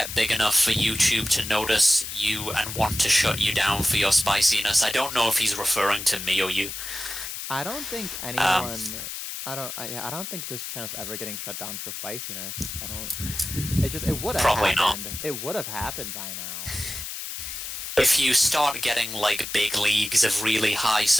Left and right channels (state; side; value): noise; left; hiss, 7 dB below the sound